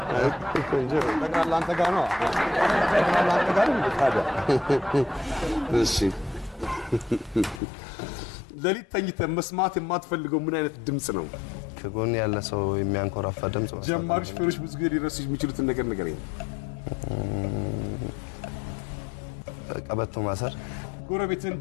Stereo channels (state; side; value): drops out; right; at 7.6 s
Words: እንጂ ተቃላ አንተ ጋር ነው ታዲያ እሺ ለሊት ተኝተህ መስማት የማትፈልገው ምን አይነት ድምጽ ነው ከጎን ያለ ሰው የሚያንኮራፋ ድምጽ ነው ጀማሪ ሹፌሮች ብዙ ጊዜ ሊረሱ የሚችሉትን ነገር ንገረኝ ቀበቶ ማሰር ጎረቤትን